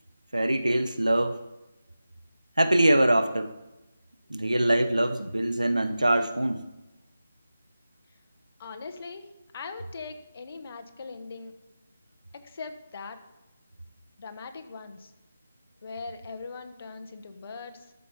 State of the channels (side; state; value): both; inverted; correlation -0.94